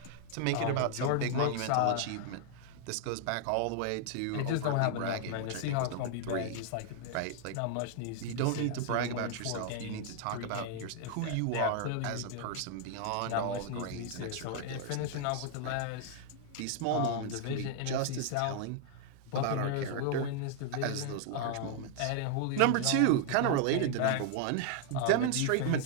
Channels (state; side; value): different; both; correlation 0.00